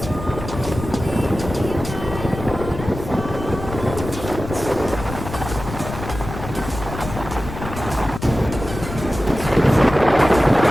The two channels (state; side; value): noise; left; rumble, 9 dB below the sound